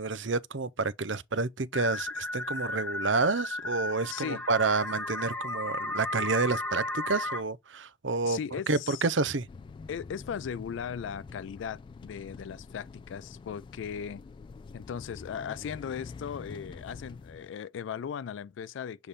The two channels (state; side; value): normal; both; correlation -0.02